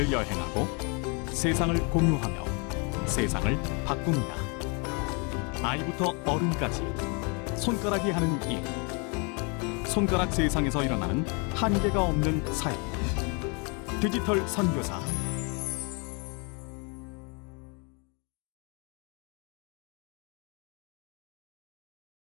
여행하고 세상을 공유하며 세상을 바꿉니다. 아이부터 어른까지 손가락이 하는 일, 손가락 세상에서 일어나는 한계가 없는 사역, 디지털 선교사.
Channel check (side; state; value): right; quieter; 33.7 dB